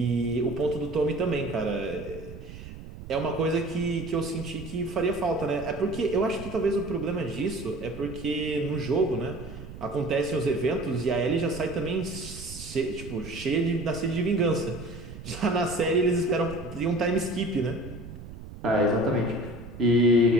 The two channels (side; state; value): right; noise; rumble, 13 dB below the sound